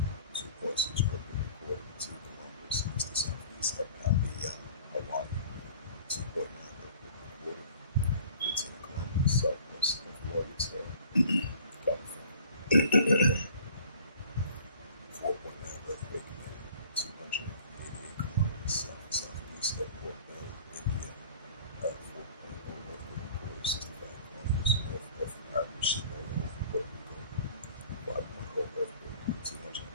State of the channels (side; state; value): both; inverted; correlation -0.48